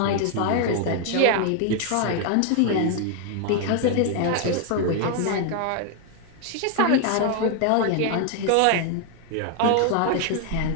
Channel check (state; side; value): different; both; correlation 0.00